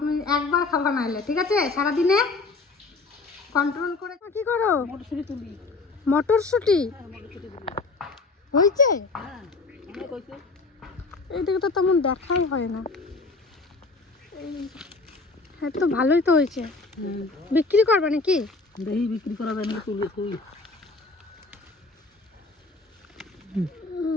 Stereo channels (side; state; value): right; quieter; 3.7 dB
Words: তুমি একবার খাবা না এলে, ঠিক আছে? সারাদিনে কন্ট্রোল করে। কি করো? মটরশুঁটি তুলি। মটরশুঁটি হয়েছে? এইদিকে তো তেমন দেখাই হয় না। হ্যাঁ তো ভালোই তো হয়েছে। বিক্রি করবে নাকি? দেখি বিক্রি করা যায় না, তুলি তুই